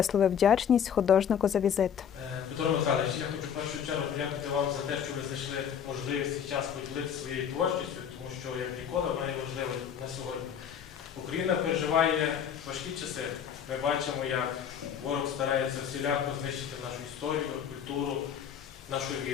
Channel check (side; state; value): right; quieter; 8.2 dB